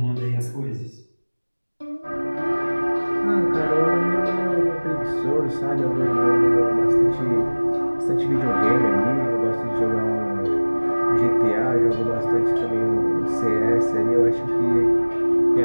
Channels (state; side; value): inverted; both; correlation -1.00